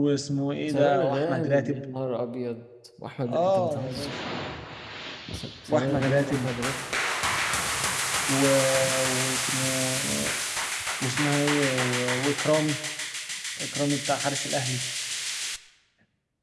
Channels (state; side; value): identical; both; correlation 1.00